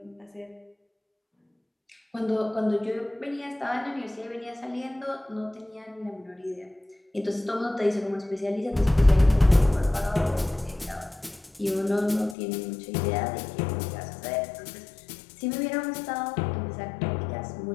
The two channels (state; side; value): drops out; right; at 12.4 s